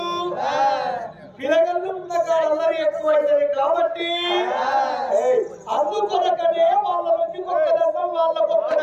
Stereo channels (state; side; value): identical; both; correlation 1.00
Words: పిల్లగాళ్ళు ఉన్న కాలంలో ఎక్కువైతుంది కాబట్టి అందుకొరకనే వాళ్ళ నుండి ఒక్క దండం వాళ్ళకు ఒక్క